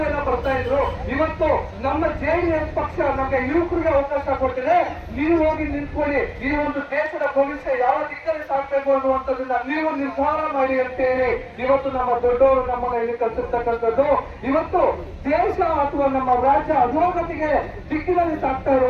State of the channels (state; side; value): identical; both; correlation 1.00